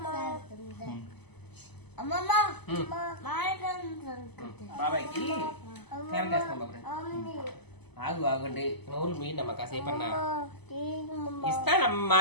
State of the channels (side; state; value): right; late; 0.99 ms